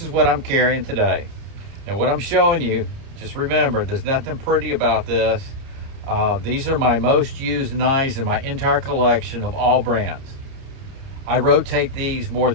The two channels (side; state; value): left; late; 30 ms